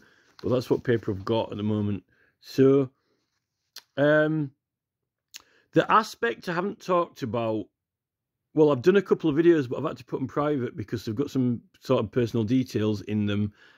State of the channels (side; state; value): both; identical; correlation 1.00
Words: that's what paper I've got at the moment. So the aspect I haven't talked about, well, I've done a couple of videos, but I've had to put them private because they've got some sort of personal details in them,